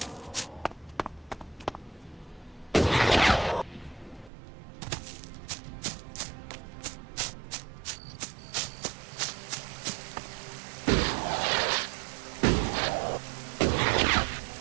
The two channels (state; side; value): drops out; left; at 4.3 s